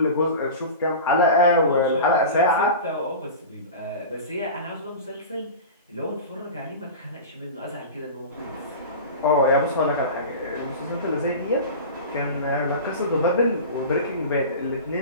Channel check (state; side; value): inverted; both; correlation -0.31